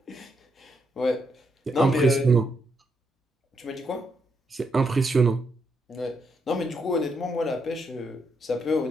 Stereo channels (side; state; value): both; normal; correlation 0.78